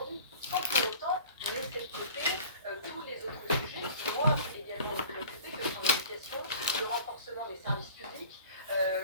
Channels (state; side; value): inverted; both; correlation -0.45